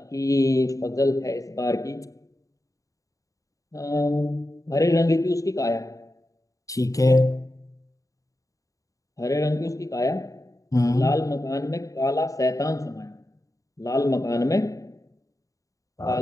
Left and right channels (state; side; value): late; right; 0.16 ms